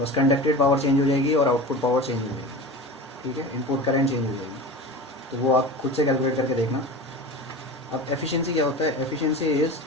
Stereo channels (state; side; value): normal; both; correlation 0.31